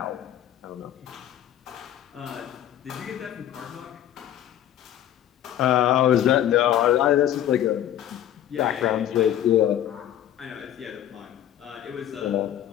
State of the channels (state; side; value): quieter; right; 11.4 dB